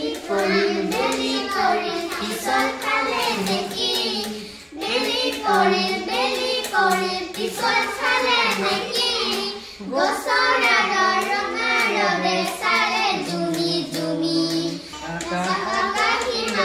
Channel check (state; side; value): identical; both; correlation 1.00